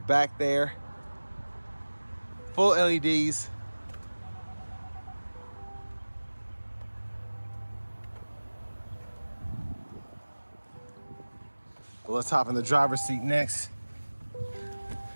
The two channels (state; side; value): inverted; both; correlation -1.00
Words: there, full LEDs. Well, let's hop in the driver's seat next.